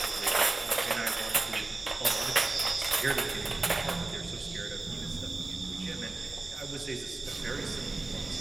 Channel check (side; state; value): left; quieter; 3.3 dB